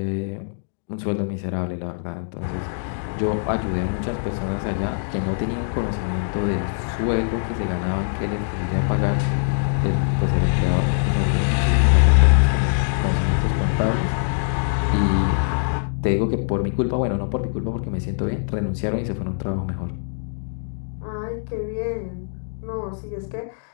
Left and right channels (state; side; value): silent; right; digital silence